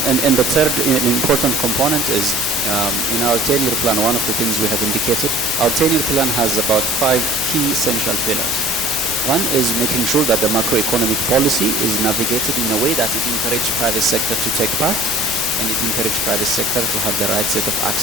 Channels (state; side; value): noise; left; hum, 18 dB below the sound